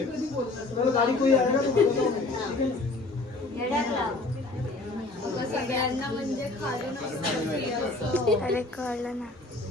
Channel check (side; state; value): right; quieter; 3.1 dB